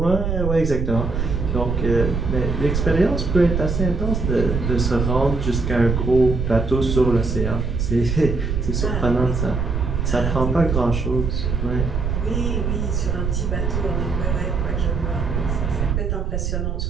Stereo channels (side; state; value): right; noise; rumble, 1 dB below the sound